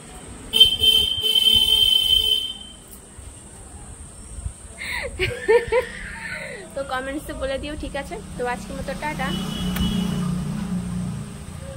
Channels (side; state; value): both; identical; correlation 1.00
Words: তো কমেন্টসে বলে দিও ঠিক আছে তো আজকের মতো টাটা